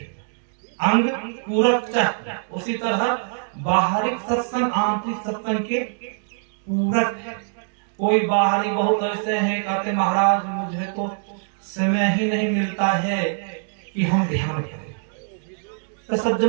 अंग पूरक चाहिए। उसी तरह बाहरिक सत्संग आंतरिक सत्संग के पूरक है। कोई बाहरी बहुत ऐसे हैं, कहते महाराज मुझे तो समय ही नहीं मिलता है कि हम ध्यान करें। तो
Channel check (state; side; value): silent; left; 63 dB below the other